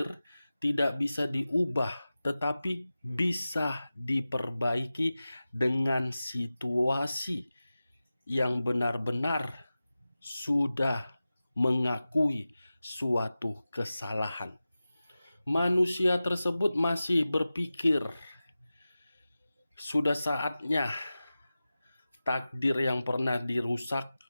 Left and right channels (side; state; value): both; inverted; correlation -0.95